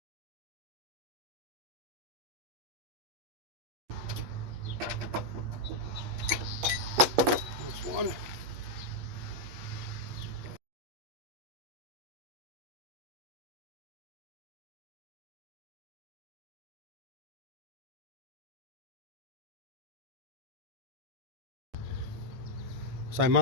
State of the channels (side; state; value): left; late; 8.7 ms